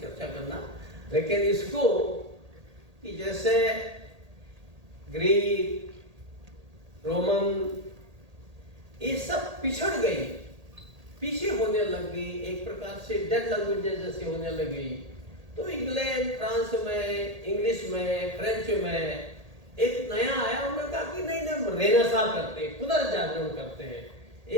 करना, लेकिन इसको कि जैसे ग्रीक, रोमन, ये सब पिछड़ गई, पीछे होने लग गई, एक प्रकार से डेड लैंग्वेजेस जैसे होने लगी। तो इंग्लैंड, फ्रांस में, इंग्लिश में, फ्रेंच में एक नया आया, उन्होंने कहा कि नहीं हम रेनेसां करते हैं, पुनर्जागरण करते हैं।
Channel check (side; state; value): left; late; 1.8 ms